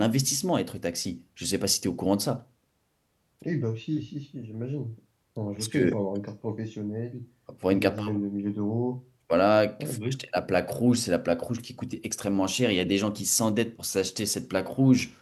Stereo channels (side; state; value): both; identical; correlation 1.00